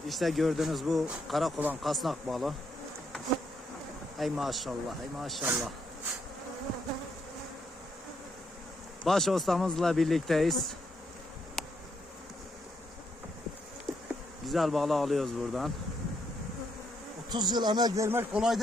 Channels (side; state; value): both; normal; correlation 0.76